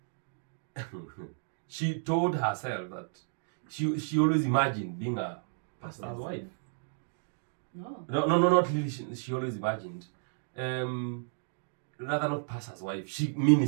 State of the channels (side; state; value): left; silent; digital silence